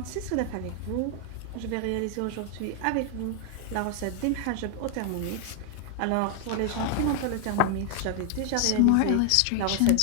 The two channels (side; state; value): both; different; correlation 0.00